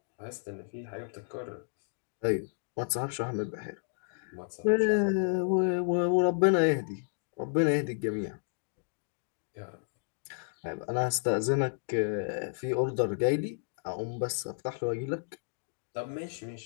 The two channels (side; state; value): right; silent; digital silence